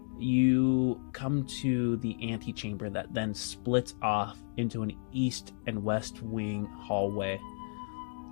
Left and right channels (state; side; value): silent; right; digital silence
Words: you come to the antechamber that then splits off into an east and west wing hallway.